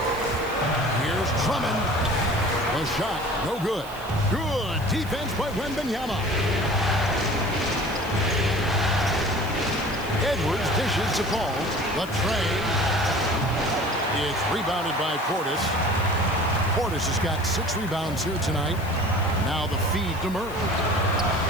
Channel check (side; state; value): left; noise; hiss, 19 dB below the sound